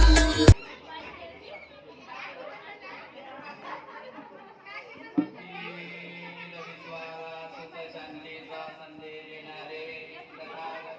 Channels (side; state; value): both; identical; correlation 1.00